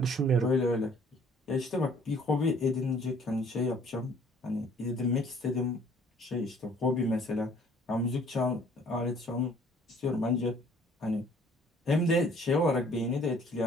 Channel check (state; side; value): normal; both; correlation 0.57